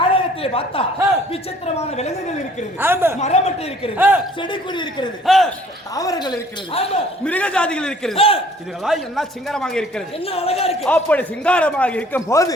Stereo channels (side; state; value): both; normal; correlation 0.56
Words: பார்த்தா விசித்திரமான விலங்குகள் இருக்கிறது. ஆமா, மரமட்டை இருக்கிறது, செடி கொடி இருக்கிறது, தாவரங்கள் இருக்கிறது, மிருக ஜாதிகள் இருக்கிறது. இதுகளாம் என்ன சிங்காரமாக இருக்கிறது, என்ன அழகா இருக்கு. அப்படி சிங்காரமாக இருக்கும் போது